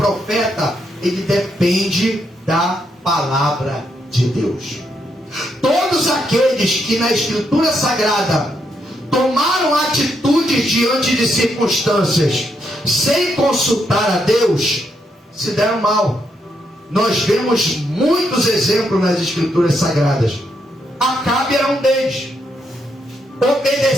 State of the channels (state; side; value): normal; both; correlation 0.78